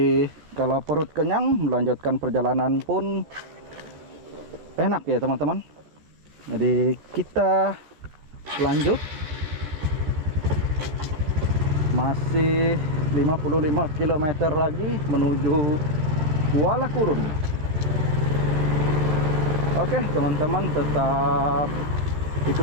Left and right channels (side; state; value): left; late; 13 ms